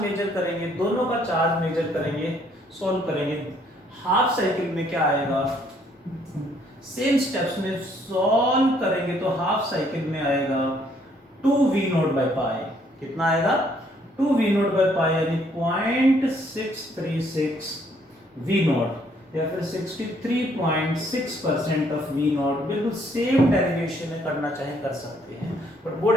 measure करेंगे, दोनों का charge measure करेंगे, solve करेंगे। Half cycle में क्या आएगा? सेम स्टेप्स में सॉल्व करेंगे तो हाफ साइकिल में आएगा 2v0/π। कितना आएगा? 2v0/π, यानी 0.636 v0 या फिर 63.6% ऑफ v0। बिल्कुल सेम डेरिवेशन में करना चाहे कर सकते हैं, बट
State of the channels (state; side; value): normal; both; correlation 0.66